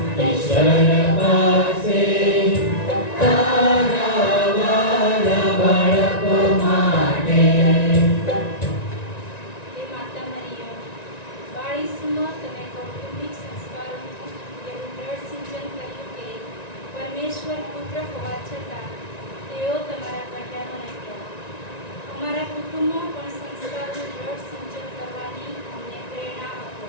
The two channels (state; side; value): late; right; 1.9 ms